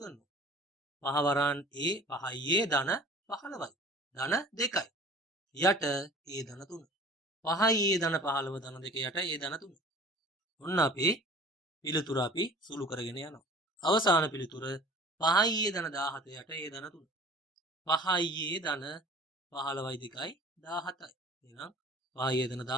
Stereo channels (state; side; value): normal; both; correlation 0.45